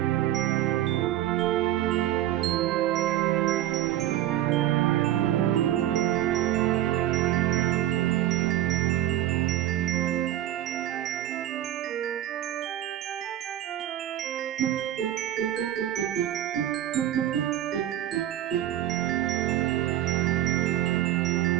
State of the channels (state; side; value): quieter; left; 12.8 dB